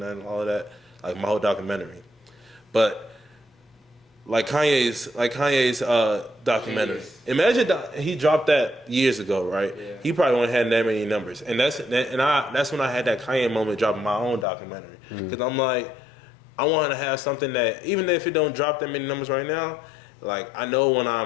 all of that, like my whole documentary, but. Like Kanye's documentary. Imagine he dropped that years ago, right? Yeah. He probably wouldn't have that many numbers, and that's when I had that Kanye moment dropping my own documentary because I'm like, I want to have something that even if it don't drop that many numbers right now, like I know when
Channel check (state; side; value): drops out; right; at 14.5 s